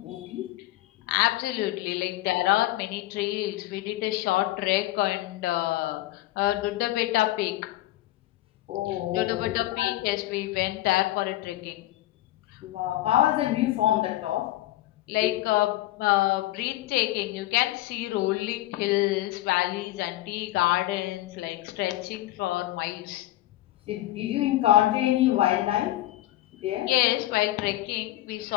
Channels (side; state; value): right; quieter; 16.0 dB